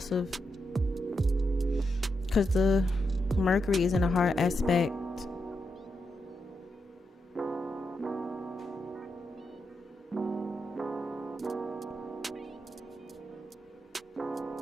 because the Mercury is in a hard aspect.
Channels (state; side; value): normal; both; correlation 0.84